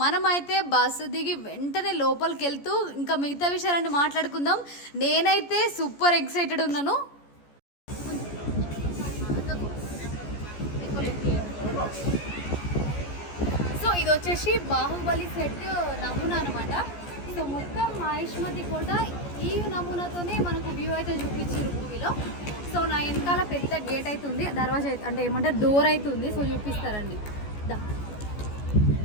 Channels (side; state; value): right; late; 14 ms